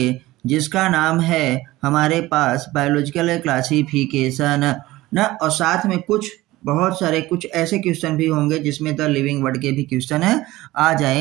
जिसका नाम है हमारे पास बायोलॉजिकल क्लासिफिकेशन ना। और साथ में बहुत सारे ऐसे क्वेश्चन भी होंगे जिसमें द लिविंग वर्ड के भी क्वेश्चन आ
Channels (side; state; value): left; quieter; 18.0 dB